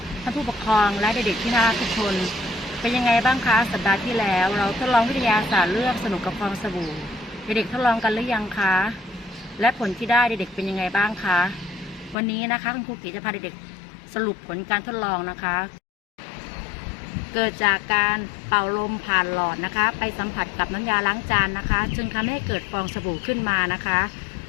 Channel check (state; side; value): drops out; right; at 12.2 s